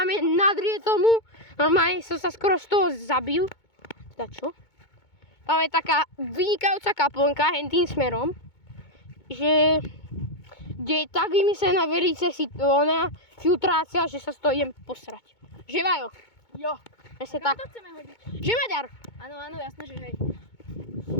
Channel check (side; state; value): right; late; 2.2 ms